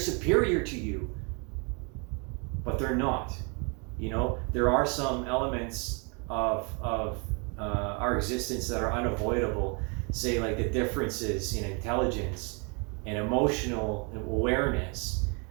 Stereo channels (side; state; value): left; quieter; 33.8 dB